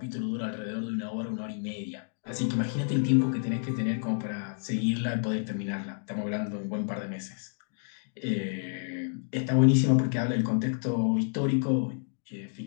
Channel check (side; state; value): right; silent; digital silence